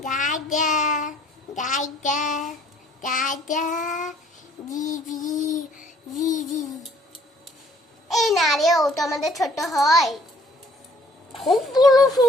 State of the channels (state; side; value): normal; both; correlation 0.60